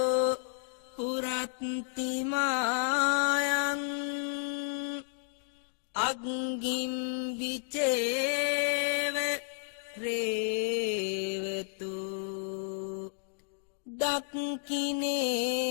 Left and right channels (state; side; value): silent; right; digital silence